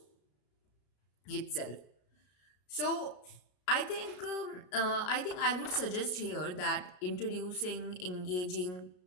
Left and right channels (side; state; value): right; late; 33 ms